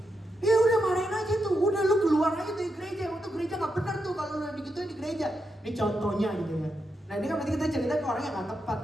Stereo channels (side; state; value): both; normal; correlation 0.84